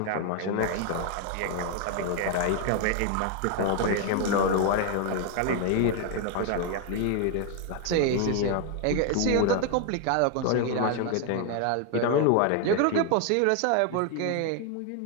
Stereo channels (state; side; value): different; both; correlation 0.00